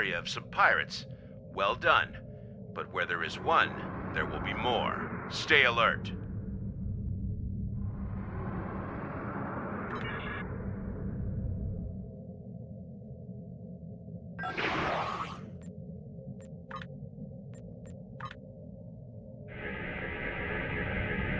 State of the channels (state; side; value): identical; both; correlation 1.00